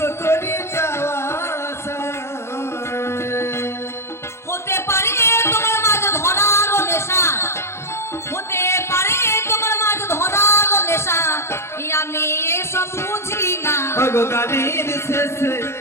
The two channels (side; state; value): right; late; 0.13 ms